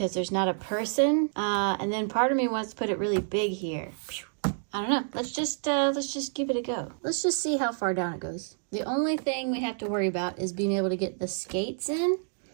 there's not a person. And then part of me wants to put it really big here. I don't know. Let's just give it a go. Let's just see how far down it goes. The only thing we have to worry about is being able to get the skates in.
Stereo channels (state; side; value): silent; left; digital silence